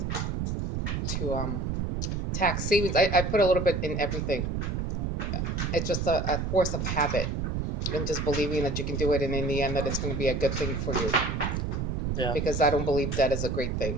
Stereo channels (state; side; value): noise; right; rumble, 1 dB below the sound